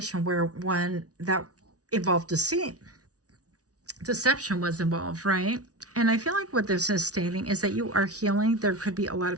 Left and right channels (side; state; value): left; late; 0.68 ms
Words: where one that involved deceit. Deception was involved, right? And I feel like what this is stating is that you are healing. There could be a lot